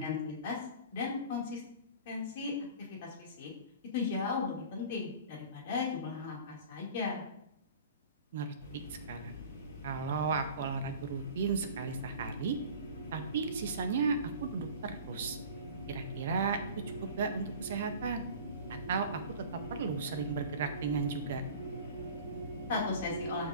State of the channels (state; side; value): inverted; both; correlation -0.41